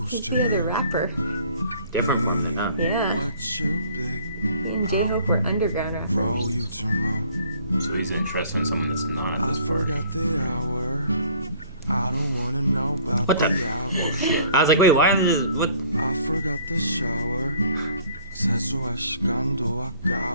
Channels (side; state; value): both; inverted; correlation -0.55